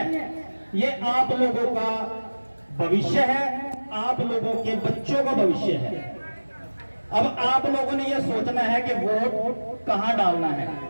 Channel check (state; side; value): inverted; both; correlation -1.00